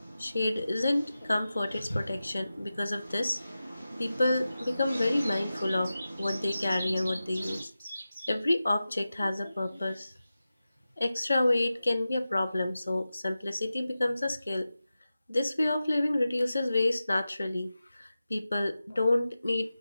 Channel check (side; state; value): both; inverted; correlation -0.94